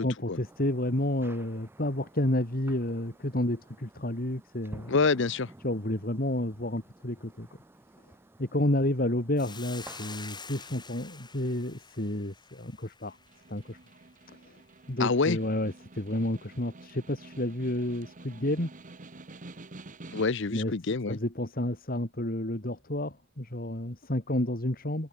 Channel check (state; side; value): normal; both; correlation 0.44